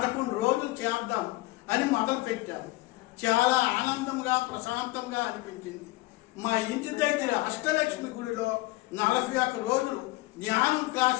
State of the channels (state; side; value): quieter; right; 20.5 dB